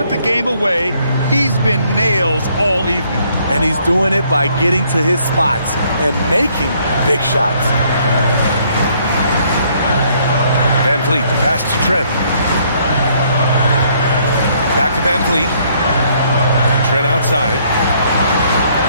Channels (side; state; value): both; inverted; correlation -0.66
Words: the game away, he's been nails all evening. And he's doing it by getting to his spots and making big shots. Van Vliet, the pass to Trent. Back to Van Vliet. Trent outside.